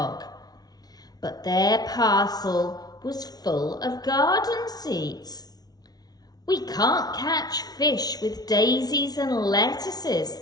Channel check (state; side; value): late; right; 0.19 ms